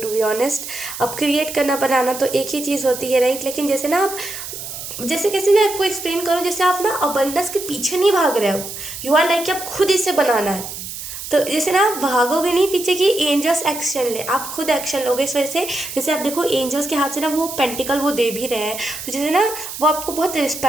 बी ऑनेस्ट अब क्रिएट करना बनाना तो एक ही चीज़ होती है, राइट। लेकिन जैसे ना आप जैसे कैसे मैं आपको एक्सप्लेन करूँ, जैसे आप ना अबंडेंस के पीछे नहीं भाग रहे हो, यू आर लाइक आप खुद इसे बनाना है। तो जैसे ना आप भागोगे नहीं पीछे कि एंजल्स एक्शन ले, आप खुद एक्शन लोगे। इस वजह से जैसे आप देखो एंजल्स के हाथ से ना वो पेंटिकल वो दे भी रहे हैं, तो जैसे ना वो आपको बहुत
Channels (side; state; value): right; noise; hiss, 9 dB below the sound